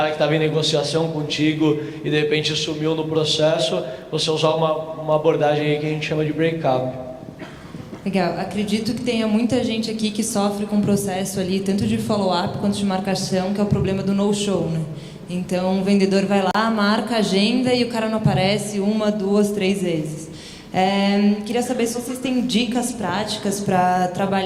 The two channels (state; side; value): identical; both; correlation 1.00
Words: que estava em negociação contigo e de repente sumiu no processo, você usar uma abordagem aí que a gente chama de break-up. Legal. Acredito que tenha muita gente aqui que sofre com o processo ali, tanto de follow-up quanto de marcação, que é o problema do no-show, né? Então, o vendedor vai lá, marca a agenda e o cara não aparece 1, 2, 3 vezes. Queria saber se vocês têm dicas práticas para